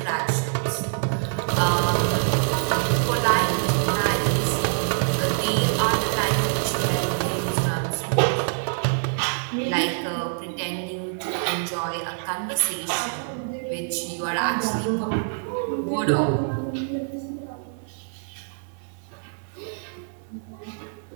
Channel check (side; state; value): left; silent; 60 dB below the other